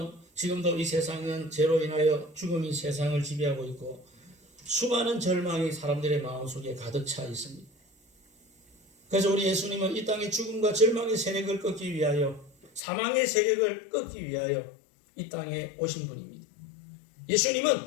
지금도 이 세상은 죄로 인하여 죽음이 세상을 지배하고 있고 수많은 절망이 사람들의 마음속에 가득 차 있습니다. 그래서 우리 예수님은 이 땅의 죽음과 절망의 세력을 꺾기 위하여 사망의 세력을 꺾기 위하여 이 땅에 오신 분입니다.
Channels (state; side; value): drops out; right; at 12.8 s